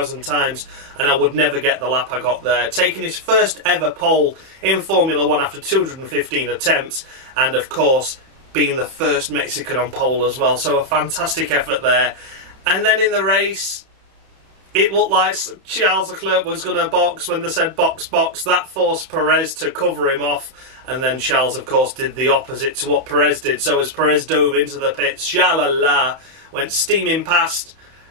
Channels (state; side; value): late; left; 31 ms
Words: times, and I would never get the lap I got there. Taking his first ever pole in Formula 1 after 215 attempts, and of course, being the first Mexican on pole as well. So a fantastic effort there. And then in the race, it looked like Charles Leclerc was going to box. When they said box, box, that forced Perez to cover him off. And then Charles, of course, did the opposite to what Perez did. So as Perez dove into the pits, sha-la-la, went steaming past.